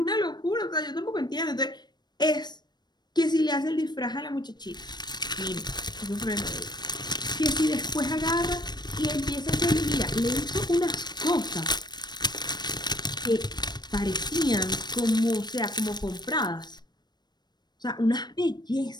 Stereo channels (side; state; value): right; late; 0.21 ms